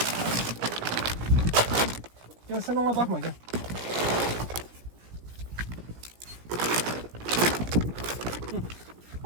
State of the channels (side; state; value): left; late; 17 ms